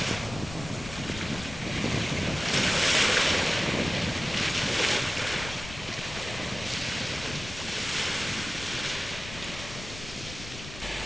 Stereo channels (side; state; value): left; noise; rumble, 13 dB below the sound